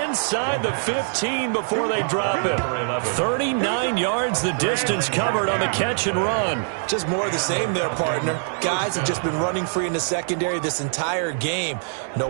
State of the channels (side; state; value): left; silent; digital silence